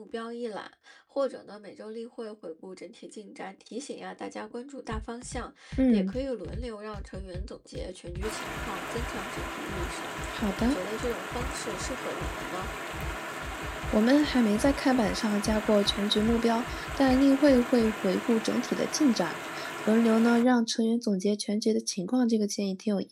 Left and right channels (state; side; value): identical; both; correlation 1.00